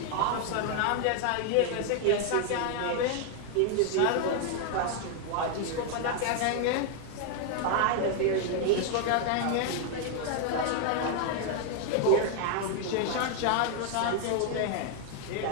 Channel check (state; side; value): different; both; correlation 0.00